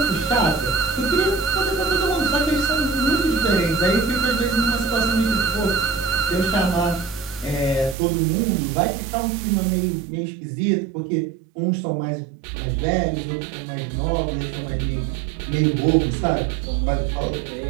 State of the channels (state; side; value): drops out; left; at 8.0 s